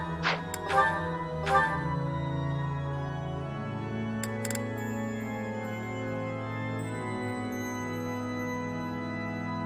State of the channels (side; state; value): both; identical; correlation 1.00